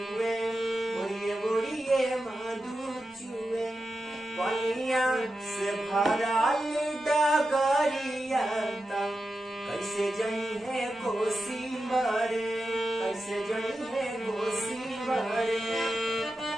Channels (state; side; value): normal; both; correlation 0.90